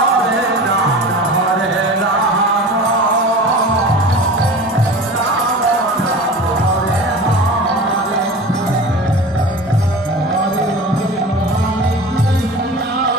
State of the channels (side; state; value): both; normal; correlation 0.35